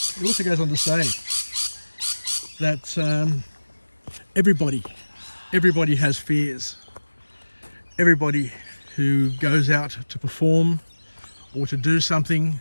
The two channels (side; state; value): both; inverted; correlation -1.00